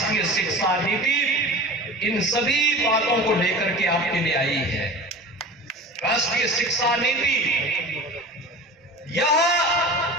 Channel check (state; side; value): normal; both; correlation 0.35